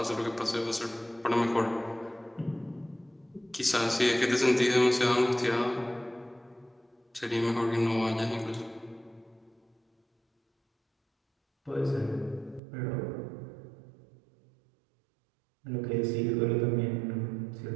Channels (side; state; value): left; drops out; at 12.6 s